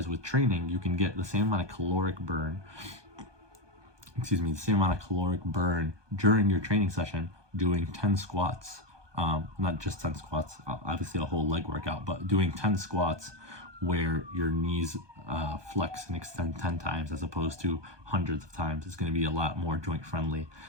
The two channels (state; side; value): late; left; 1.2 ms